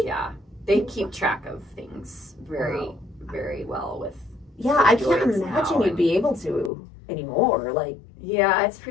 Yeah. They keep track of things very, Wow. very well with. Yeah, I can't Androids imagine now you'd be able to anymore. Like, Yeah, it's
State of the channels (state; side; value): drops out; right; at 6.7 s